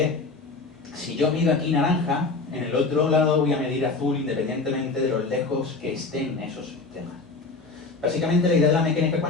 si yo mido aquí naranja, en el otro lado voy a medir azul independientemente de los lejos que estén esos sistemas. Básicamente la idea de la mecánica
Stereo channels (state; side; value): quieter; right; 3.8 dB